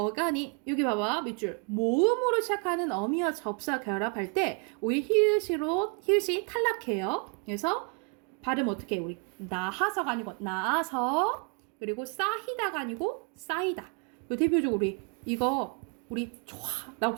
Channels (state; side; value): quieter; left; 35.1 dB